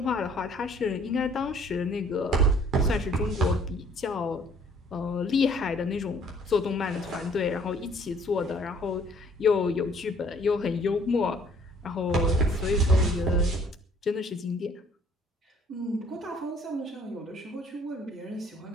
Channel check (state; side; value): normal; both; correlation 0.58